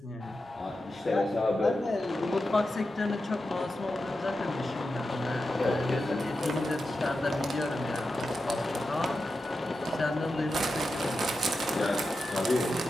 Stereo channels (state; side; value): normal; both; correlation 0.90